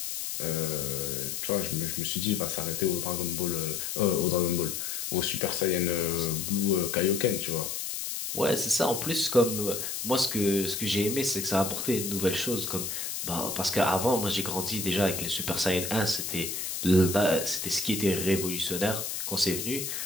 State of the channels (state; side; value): noise; left; hiss, 4 dB below the sound